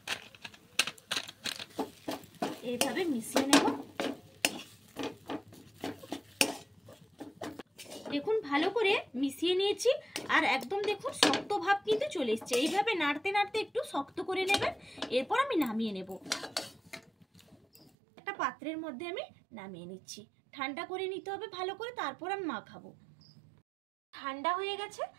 এইভাবে মিশিয়ে নেব। দেখুন ভালো করে মিশিয়ে নিয়েছি। আর একদম দেখুন শক্ত ভাব কিন্তু চলে এসছে। এইভাবে নাড়তে নাড়তে একটু শক্ত করে নেবেন। এরপর আমি নামিয়ে নেব। একটা পাত্রের মধ্যে আমি নামিয়ে নিচ্ছি। ঠান্ডা করে নিতে হবে ভালো করে, তারপর আমি মাখাবো। ঠান্ডা হয়ে গেছে।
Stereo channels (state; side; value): drops out; left; at 17.9 s